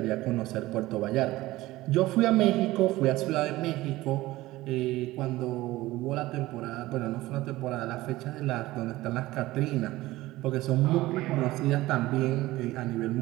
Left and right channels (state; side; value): quieter; left; 17.9 dB